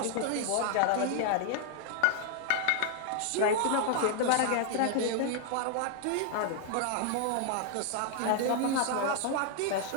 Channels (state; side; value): different; both; correlation 0.00